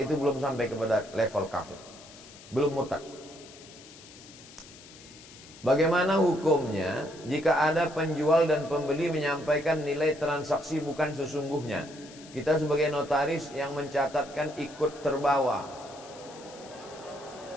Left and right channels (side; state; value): left; noise; hiss, 19 dB below the sound